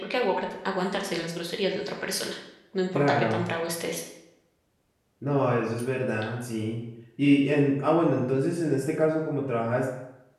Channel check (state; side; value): identical; both; correlation 1.00